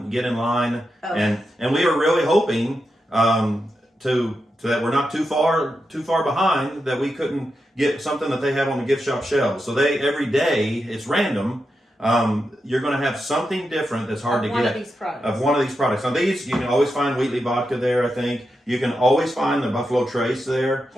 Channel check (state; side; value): normal; both; correlation 0.87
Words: get in line, and we are really hoping to that we're not too far behind, that we couldn't get something that they have on the gift shop shelves. So they, every day, it's random. You're going to have something different that's hard to get of one of these products. Now these, you can always find Wheatley vodka there, I think. You can always find the Buffalo Trace there.